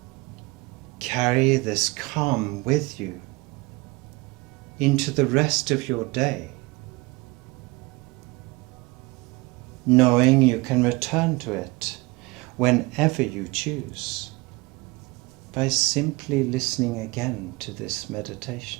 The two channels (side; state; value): left; quieter; 24.2 dB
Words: Carry this calm with you into the rest of your day, knowing you can return to it whenever you choose by simply listening again to this